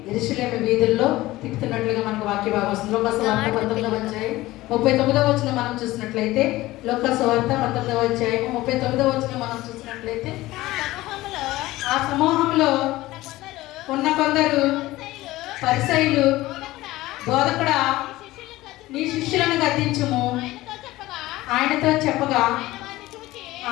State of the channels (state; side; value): quieter; right; 17.7 dB